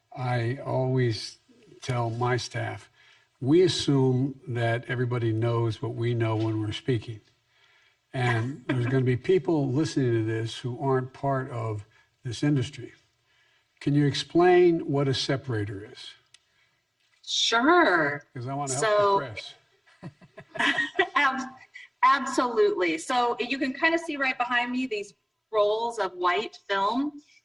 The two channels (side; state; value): both; identical; correlation 1.00